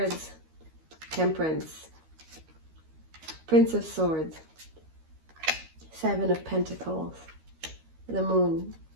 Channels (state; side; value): late; left; 13 ms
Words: Temperance, Prince of Swords, Seven of Pentacles, the Moon,